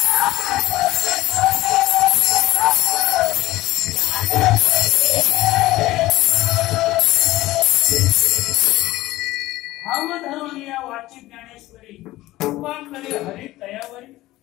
कृपांकरे हरी तयावरी.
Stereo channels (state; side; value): quieter; right; 17.1 dB